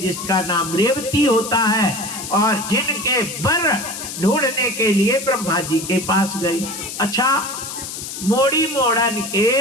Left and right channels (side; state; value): left; noise; hiss, 8 dB below the sound